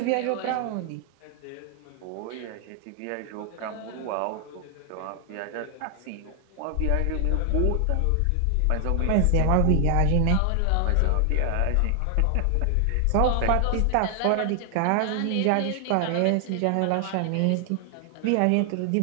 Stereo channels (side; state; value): both; different; correlation 0.00